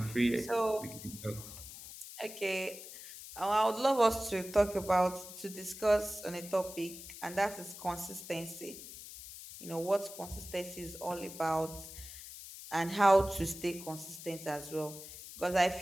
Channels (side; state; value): left; noise; hiss, 13 dB below the sound